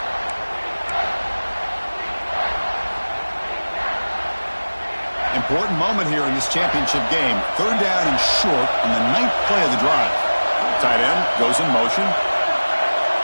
Important moment here in this championship game. 3rd down and short on the 9th play of the drive. Tight end goes in motion.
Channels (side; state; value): both; inverted; correlation -1.00